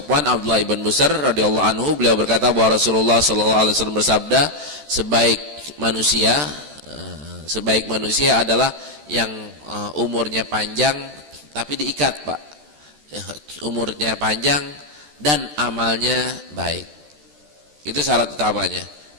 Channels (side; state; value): left; late; 14 ms